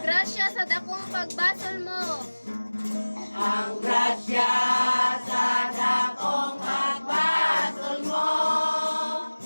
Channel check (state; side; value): inverted; both; correlation -1.00